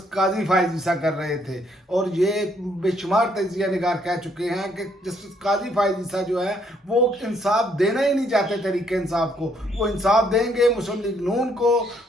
काजी फायज ईसा कर रहे थे, और ये बेशुमार तजिया निगार कह चुके हैं कि जस्टिस काजी फायज ईसा जो है वो इंसाफ देना ही नहीं चाहते। तरीके इंसाफ को वो इंसाफ देंगे मुस्लिम लीग नून को,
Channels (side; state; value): both; normal; correlation 0.69